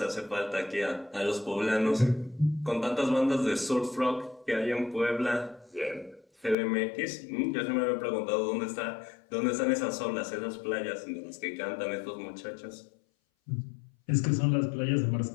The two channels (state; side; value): drops out; right; at 6.6 s